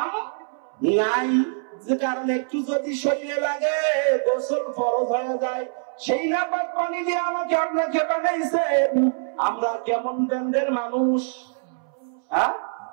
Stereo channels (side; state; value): left; silent; 62 dB below the other